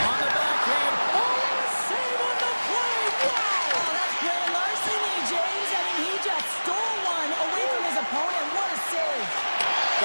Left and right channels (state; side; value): inverted; both; correlation -1.00